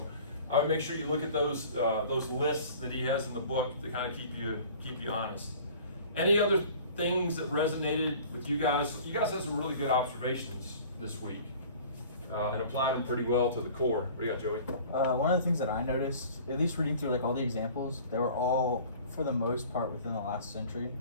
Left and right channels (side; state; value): both; inverted; correlation -0.46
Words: I would make sure you look at those lists that he has in the book to kind of keep you honest. Any other things that resonated with you guys? You guys had some really good observations this week and applied them pretty well to the core. What do you got, Joey? One of the things that I noticed, at least reading through all the examples, they were all, for the most part, within the last century.